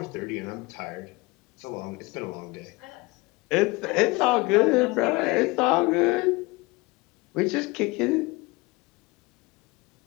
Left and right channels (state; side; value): quieter; right; 24.2 dB